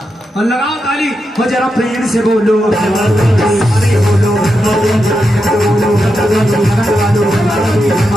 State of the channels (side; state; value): both; normal; correlation 0.86